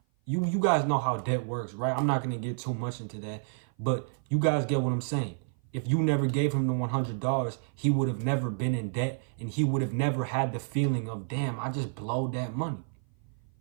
You guys know how debt works, right? I'm not going to get too much into that, but you guys get what I'm saying. If you never gave him the $100, he would have never been in debt, and he would have never had the feeling of, damn, I just blowed that money.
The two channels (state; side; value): silent; left; 55 dB below the other